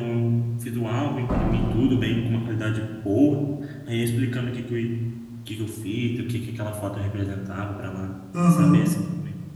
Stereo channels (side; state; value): both; identical; correlation 1.00